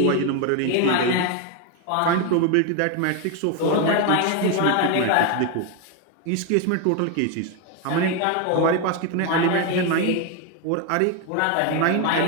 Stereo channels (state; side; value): different; both; correlation 0.01